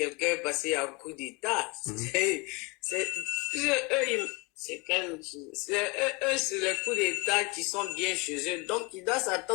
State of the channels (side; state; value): right; quieter; 27.6 dB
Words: parce qu'il y a un coup d'État. C'est les coups d'État qui sont bien chez eux. Donc, il doit